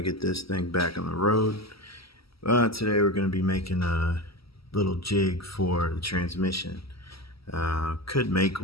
get this thing back on the road. Today we're going to be making a little jig for the transmission. Could make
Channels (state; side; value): late; right; 0.75 ms